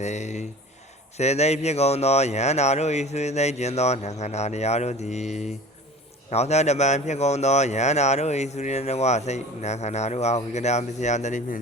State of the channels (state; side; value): normal; both; correlation 0.40